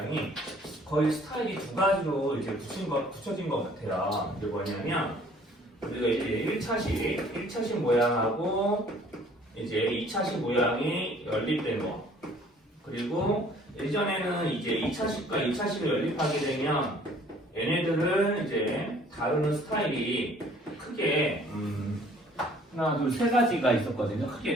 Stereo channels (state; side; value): normal; both; correlation 0.56